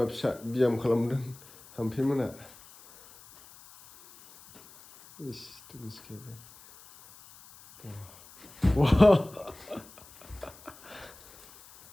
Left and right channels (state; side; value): noise; left; hiss, 22 dB below the sound